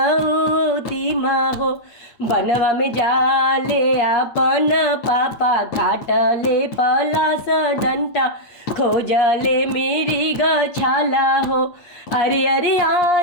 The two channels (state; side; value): late; right; 8.5 ms